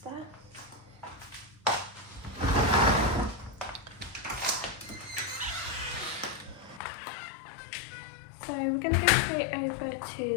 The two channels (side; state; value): right; drops out; at 6.8 s